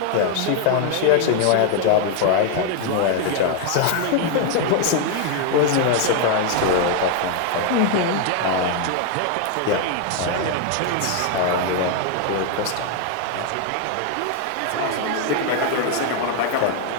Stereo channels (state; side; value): different; both; correlation 0.00